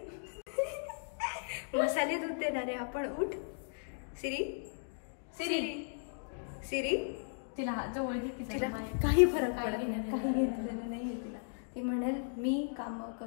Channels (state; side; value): silent; right; digital silence